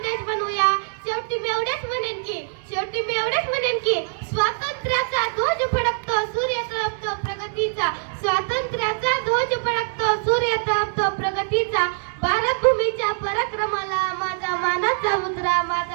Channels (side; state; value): left; silent; digital silence